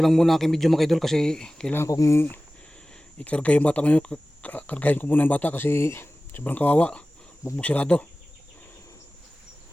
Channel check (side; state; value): both; normal; correlation 0.97